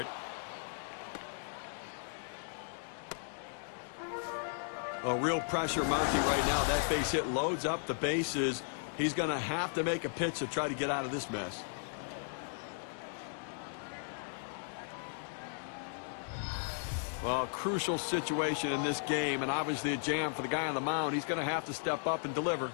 A real pressure mounting right now. That base hit loads up the bases. He's going to have to make a pitch to try to get out of this mess. Well, a crucial situation in this game, and obviously a jam for the guy on the mound. He's going to have to step up and deliver.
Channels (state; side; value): silent; right; digital silence